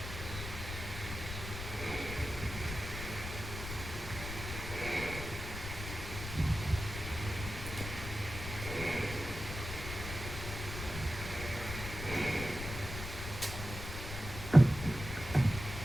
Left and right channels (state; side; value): noise; left; rumble, 7 dB below the sound